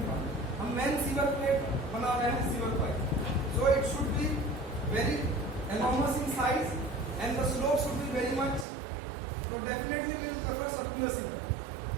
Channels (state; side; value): drops out; left; at 8.7 s